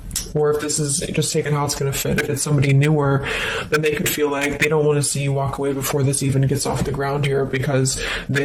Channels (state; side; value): identical; both; correlation 1.00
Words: Or if this is just taking how it's going to fit, if it's somebody newer, then they could feel like they don't want to see you walk away before this even gets off the ground here, because